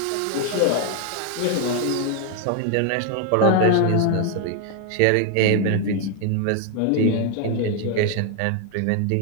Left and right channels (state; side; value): different; both; correlation 0.00